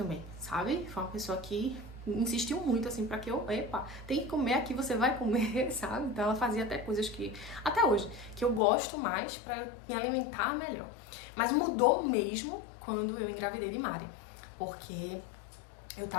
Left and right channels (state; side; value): drops out; right; at 8.6 s